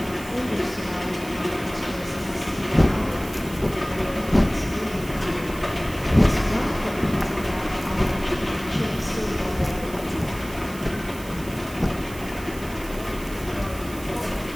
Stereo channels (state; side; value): noise; right; hiss, 17 dB below the sound